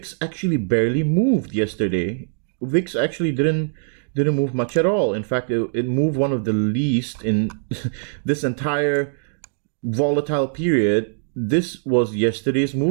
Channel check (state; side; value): silent; left; digital silence